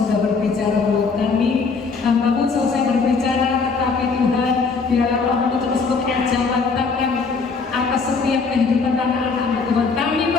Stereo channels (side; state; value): right; quieter; 4.7 dB